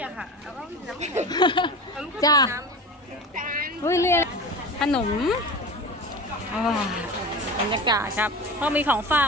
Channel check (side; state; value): both; normal; correlation 0.31